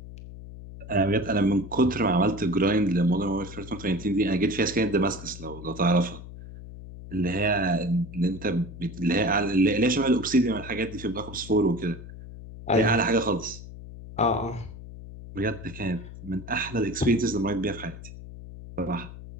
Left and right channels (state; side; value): noise; left; hum, 14 dB below the sound